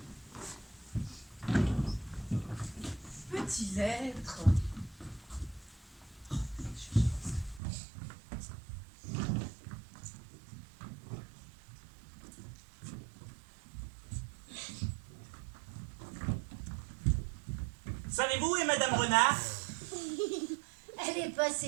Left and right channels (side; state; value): left; drops out; at 7.6 s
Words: Petit lettre. Savez-vous où est Madame Renard? Elle est